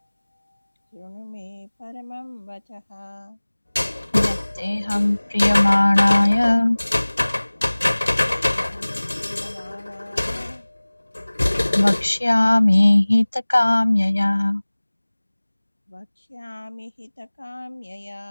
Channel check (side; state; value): both; inverted; correlation -1.00